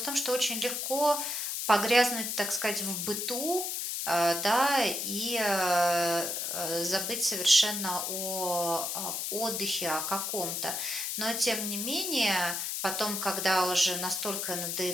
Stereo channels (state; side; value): noise; left; hiss, 2 dB below the sound